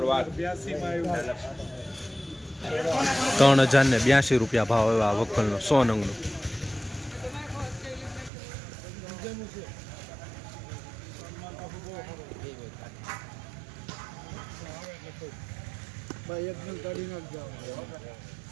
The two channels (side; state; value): left; drops out; at 8.3 s